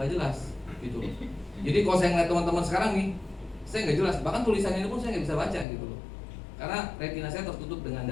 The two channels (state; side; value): drops out; right; at 5.7 s